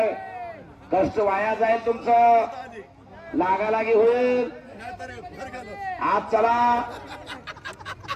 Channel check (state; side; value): identical; both; correlation 1.00